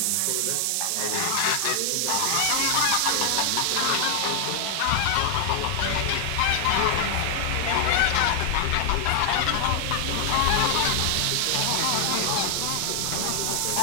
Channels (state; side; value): different; both; correlation 0.00